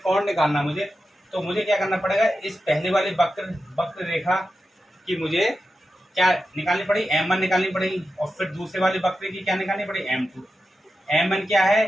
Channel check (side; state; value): both; normal; correlation 0.90